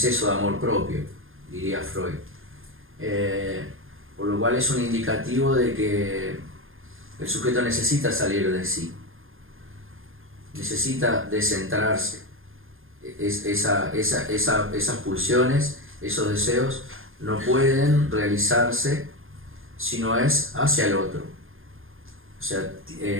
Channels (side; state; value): left; late; 0.59 ms